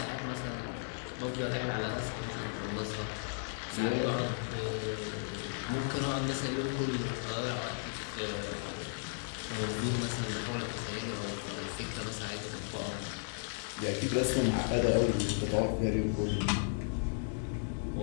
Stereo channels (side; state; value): right; silent; 54 dB below the other